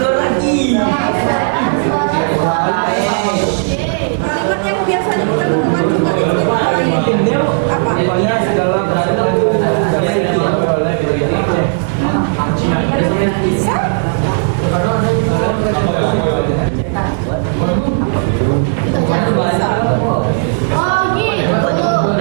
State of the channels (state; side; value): silent; left; digital silence